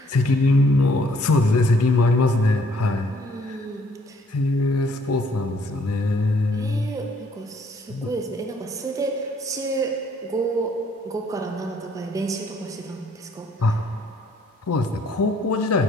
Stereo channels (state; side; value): normal; both; correlation 0.63